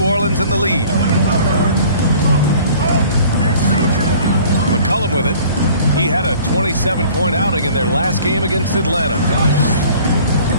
Orleans in the lead. McCollum with it. He had a 27-point outing in their last game against Atlanta.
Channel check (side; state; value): both; inverted; correlation -0.50